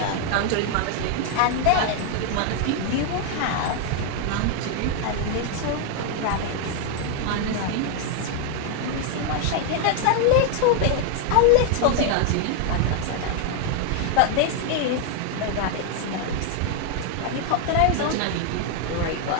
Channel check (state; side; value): different; both; correlation 0.00